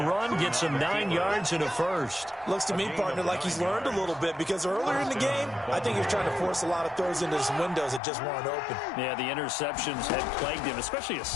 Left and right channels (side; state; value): right; drops out; at 8.0 s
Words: run, get some 9 yards and a first. Looks to me, partner, like he's learned a little bit because earlier in the game, I think he was trying to force a lot of throws into some windows that just weren't open. Yeah, the interceptions had plagued him, especially a